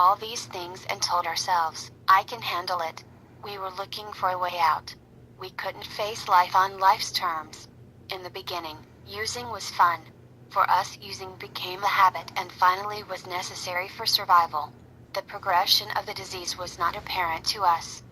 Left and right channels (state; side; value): identical; both; correlation 1.00